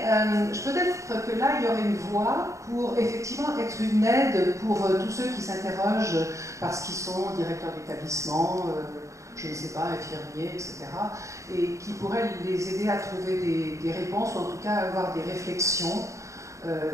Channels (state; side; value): late; left; 0.15 ms